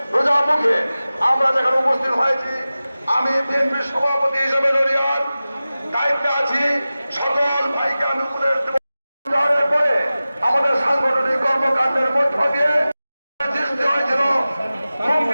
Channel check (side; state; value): both; inverted; correlation -0.96